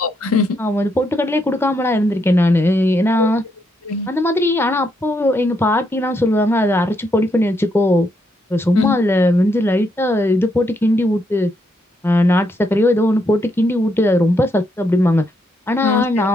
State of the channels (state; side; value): normal; both; correlation 0.77